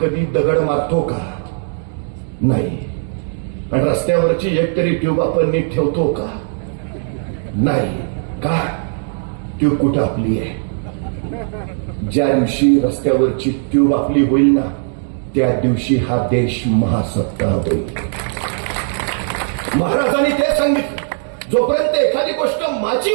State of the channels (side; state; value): left; silent; 65 dB below the other